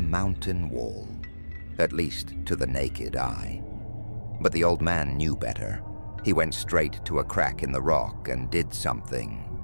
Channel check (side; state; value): both; inverted; correlation -1.00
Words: wall, at least to the naked eye. But the old man knew better. He went straight to a crack in the rock and did